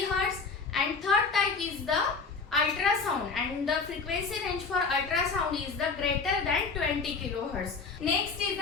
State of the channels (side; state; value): right; quieter; 4.7 dB